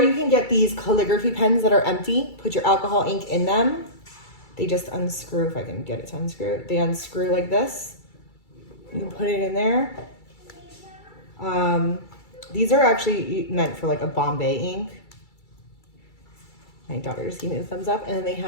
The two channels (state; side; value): late; right; 2.3 ms